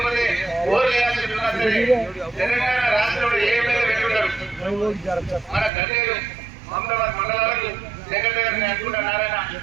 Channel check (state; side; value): drops out; left; at 5.7 s